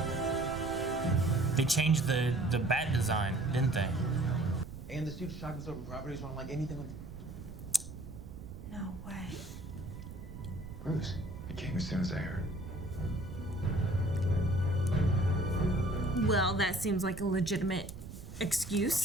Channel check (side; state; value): right; noise; rumble, 12 dB below the sound